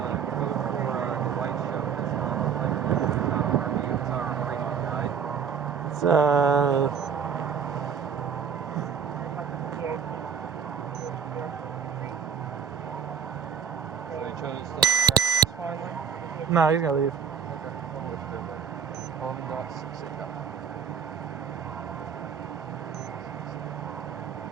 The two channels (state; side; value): quieter; left; 6.8 dB